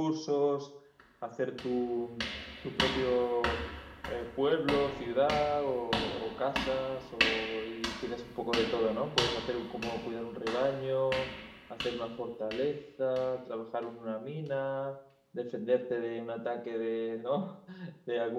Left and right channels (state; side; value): identical; both; correlation 1.00